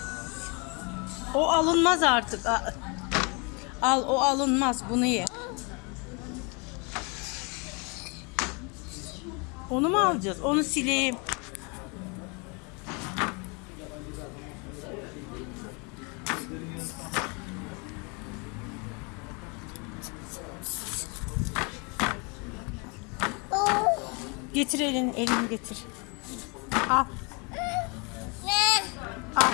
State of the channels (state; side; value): quieter; right; 32.0 dB